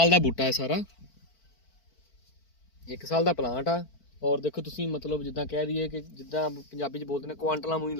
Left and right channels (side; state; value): right; late; 4.5 ms